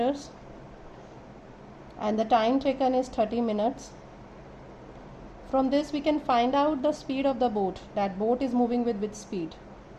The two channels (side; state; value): both; identical; correlation 1.00